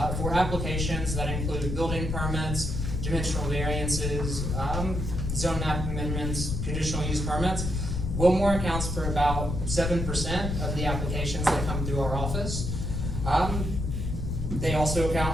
for applications that include building permits, dimensional variances, zone map amendments, conditional use permits. Wilmore accounts for about 7% of the applications that come through our office. They also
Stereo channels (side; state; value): left; noise; rumble, 2 dB below the sound